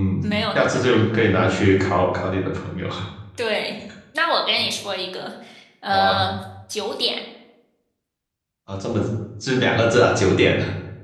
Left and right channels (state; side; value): identical; both; correlation 1.00